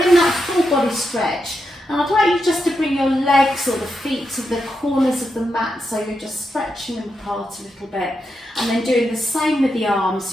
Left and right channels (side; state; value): both; normal; correlation 0.85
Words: in that full body stretch. And I'd like you just to bring your legs or the feet to the corners of the mat, so you're just stretching them apart a little bit. And then doing the same with the arms,